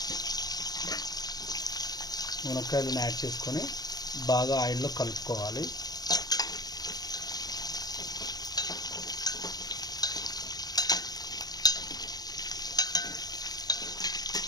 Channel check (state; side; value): late; right; 0.19 ms